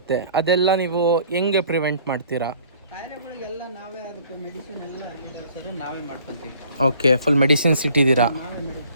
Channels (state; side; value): inverted; both; correlation -0.54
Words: ಅದೆಲ್ಲ ನೀವು ಹೆಂಗೆ ಪ್ರಿವೆಂಟ್ ಮಾಡ್ತೀರಾ? ಕಾಯಿಲೆಗಳಿಗೆಲ್ಲ ನಾವೇ ಅದಕ್ಕೆ ಮೆಡಿಸಿನ್ ಎಲ್ಲ ಹಾಕಿದ್ದೀವಿ ಸರ್, ನಾವೇ ಮಾಡ್ಕೊತೀವಿ. ಓಕೆ, ಫುಲ್ ಮೆಡಿಸಿನ್ಸ್ ಇಟ್ಟಿದ್ದೀರಾ? ನಾವೇ